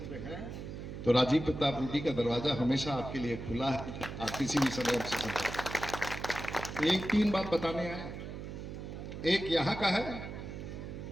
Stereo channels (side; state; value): right; noise; hum, 8 dB below the sound